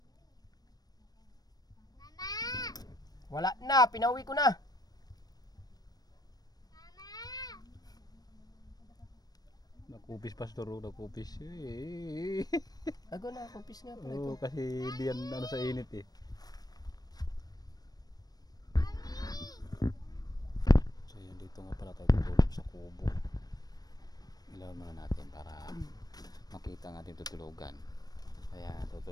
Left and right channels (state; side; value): late; right; 0.19 ms